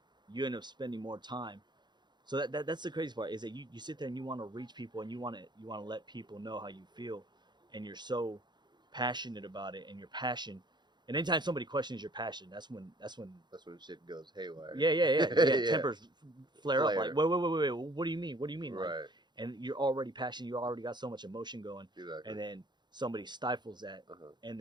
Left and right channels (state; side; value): late; left; 0.21 ms